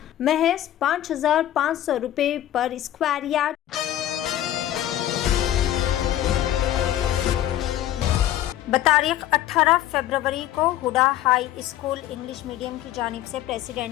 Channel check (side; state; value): right; quieter; 12.8 dB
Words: محض 5,500 روپے پر اسکوائر یارڈ بتاریخ 18 فروری کو Huda high school English medium کی جانب سے